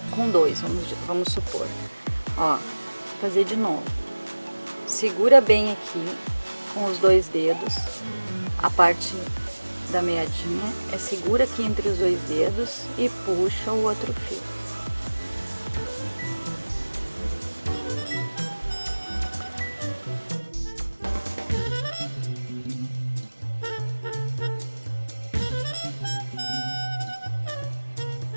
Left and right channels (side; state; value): both; inverted; correlation -1.00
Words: com 2, vamos supor. Ó, fazer de novo. Segura bem aqui com os 2 dedos, a parte da meadinha, segura aqui entre os 2 dedos e puxa o outro fio.